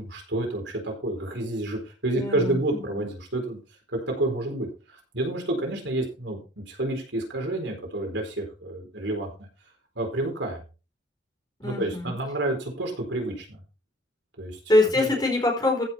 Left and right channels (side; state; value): both; normal; correlation 0.46